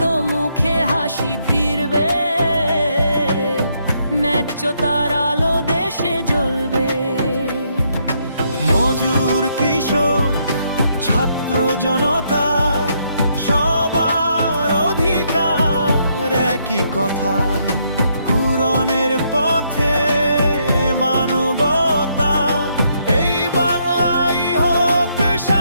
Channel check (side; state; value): both; inverted; correlation -0.74